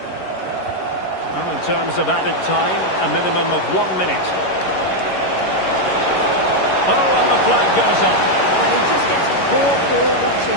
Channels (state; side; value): late; right; 11 ms